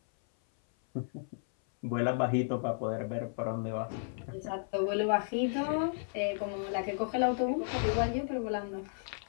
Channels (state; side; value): silent; right; 56 dB below the other